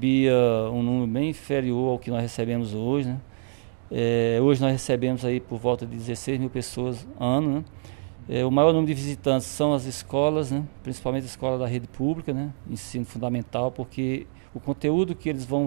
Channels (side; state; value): left; silent; digital silence